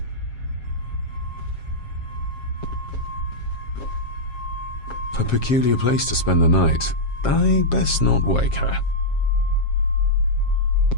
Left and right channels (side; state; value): right; late; 7.4 ms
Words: A peculiar place to spend the night. I best not wake her.